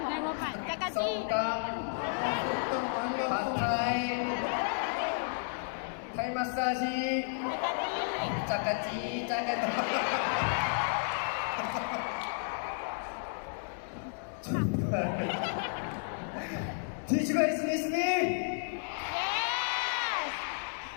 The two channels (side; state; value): right; silent; digital silence